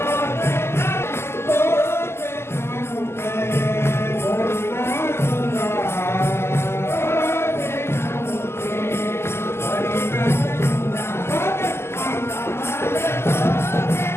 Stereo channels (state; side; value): late; right; 0.12 ms